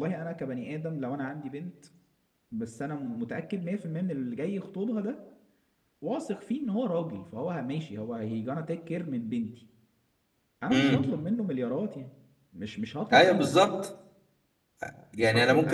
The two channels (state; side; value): identical; both; correlation 1.00